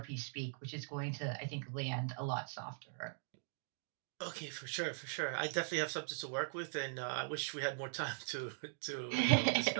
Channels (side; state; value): left; silent; digital silence